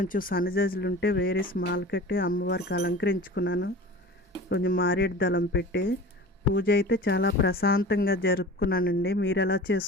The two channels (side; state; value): both; normal; correlation 0.37